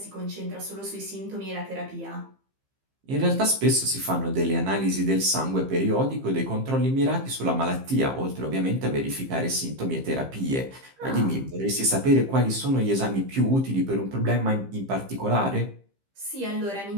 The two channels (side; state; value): left; late; 15 ms